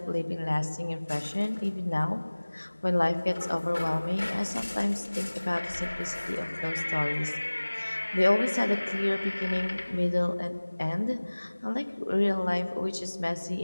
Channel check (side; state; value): both; inverted; correlation -1.00